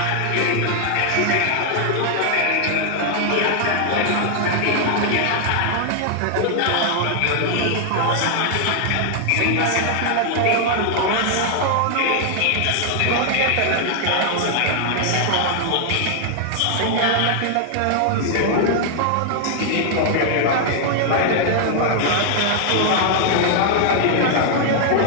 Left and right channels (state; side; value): different; both; correlation 0.00